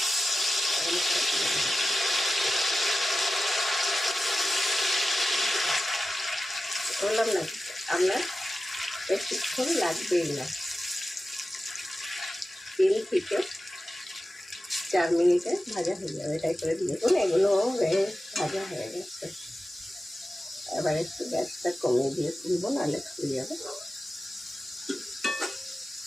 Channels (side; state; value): both; normal; correlation 0.93